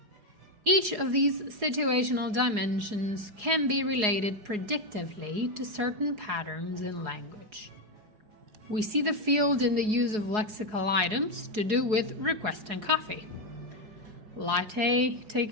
Each of these situational dimensions can be related predictively to certain patterns in language. We see the field in the use of lexical items to do with requesting coffee. Latte,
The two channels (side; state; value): left; late; 4.7 ms